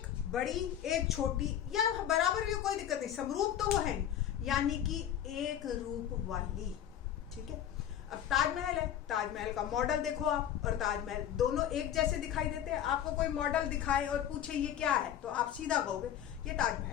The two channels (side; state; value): right; quieter; 10.3 dB